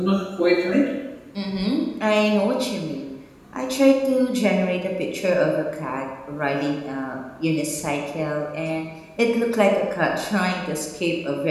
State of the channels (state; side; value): identical; both; correlation 1.00